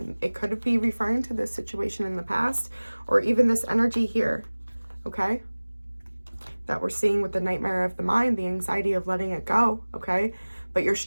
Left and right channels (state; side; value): inverted; both; correlation -1.00